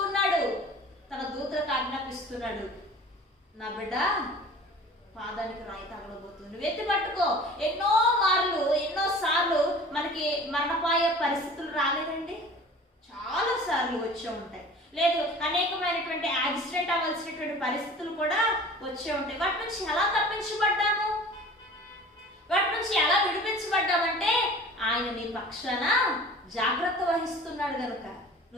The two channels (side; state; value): both; normal; correlation 0.43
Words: ఉన్నాడు, తన దూతలకు ఆజ్ఞాపిస్తున్నాడు, నా బిడ్డ పాదానికి రాయి తగలబోతుంది, నువ్వు ఎత్తి పట్టుకో. ఎన్నోసార్లు మనకి మరణపాయ పరిస్థితులు రాలేదండి, చాలా సార్లు వచ్చే ఉంటాయి. లేదు, అనేకమైనటువంటి యాక్సిడెంట్ అవ్వాల్సినటువంటి పరిస్థితులు కూడా వచ్చే ఉంటాయి. వాటి నుంచి ఎలా తప్పించబడ్డాము, వాటి నుంచి ఎలా విడిపించబడ్డామంటే ఆయన నీ పక్షాన జాగ్రత్త వహిస్తున్నాడు కనుక